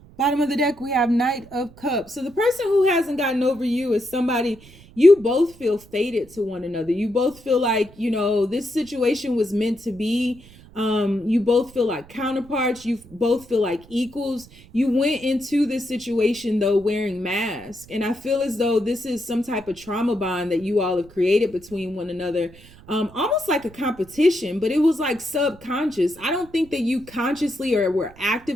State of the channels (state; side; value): noise; right; rumble, 23 dB below the sound